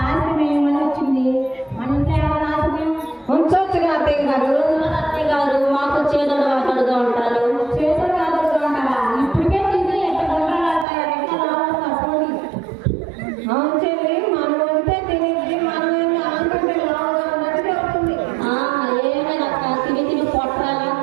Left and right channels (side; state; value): left; drops out; at 10.9 s